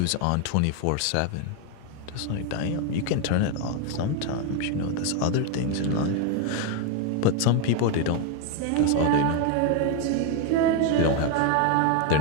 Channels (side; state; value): both; different; correlation 0.01